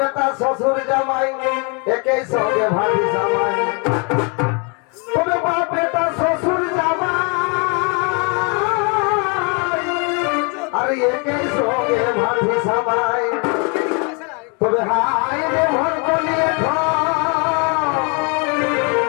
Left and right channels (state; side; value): quieter; right; 34.5 dB